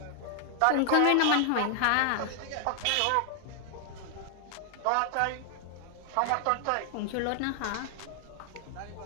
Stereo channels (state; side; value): different; both; correlation 0.00